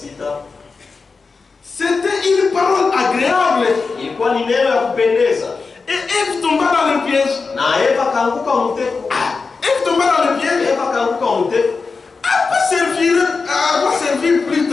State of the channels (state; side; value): quieter; right; 4.5 dB